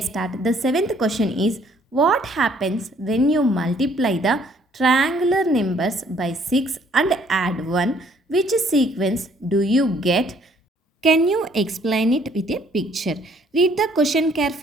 start. The 7th question is, what happens when you multiply the triangular numbers by 6 and add 1? Which sequence do you get? Can you explain it with a picture? Read the question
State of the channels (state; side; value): normal; both; correlation 0.63